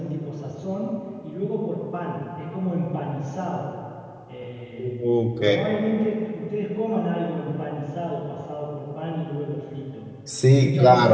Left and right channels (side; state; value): both; identical; correlation 1.00